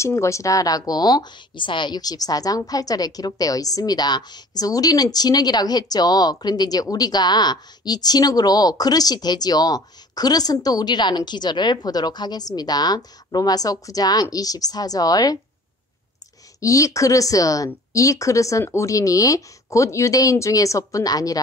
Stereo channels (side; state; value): both; normal; correlation 0.48